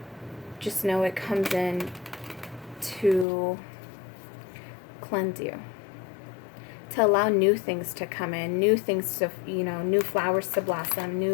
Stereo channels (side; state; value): right; drops out; at 3.2 s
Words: Just know it comes in to cleanse you, to allow new things to come in, new things to, new flowers to blossom,